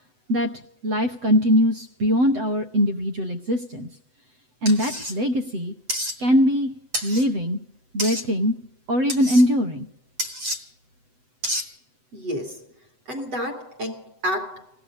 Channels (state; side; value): late; left; 7.9 ms